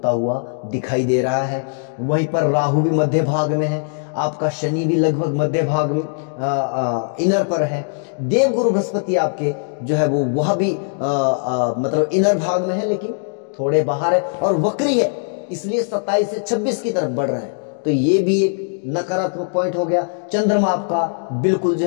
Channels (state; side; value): silent; right; digital silence